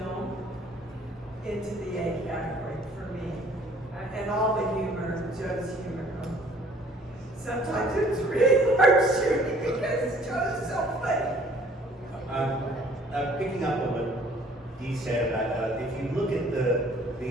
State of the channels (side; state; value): both; normal; correlation 0.56